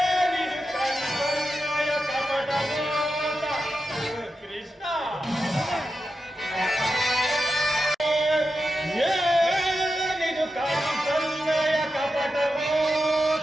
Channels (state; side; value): normal; both; correlation 0.90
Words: ಕಣ್ಸನ್ನಯ ಕಪಟ ಮಾತ. ಕೃಷ್ಣ, ಏನಿದು ಕಣ್ಸನ್ನಯ ಕಪಟ